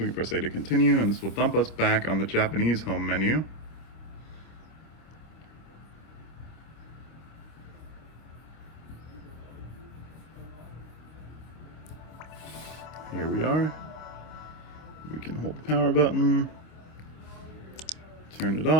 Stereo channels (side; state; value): right; late; 26 ms